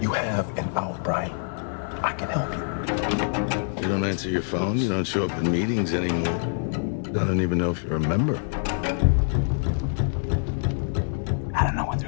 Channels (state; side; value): silent; right; digital silence